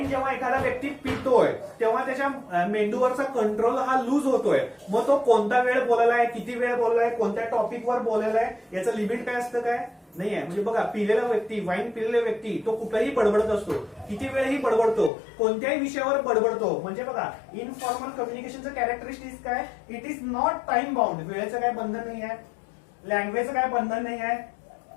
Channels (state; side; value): drops out; right; at 15.1 s